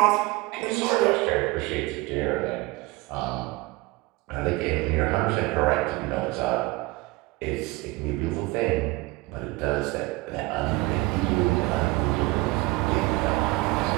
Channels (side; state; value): left; quieter; 22.5 dB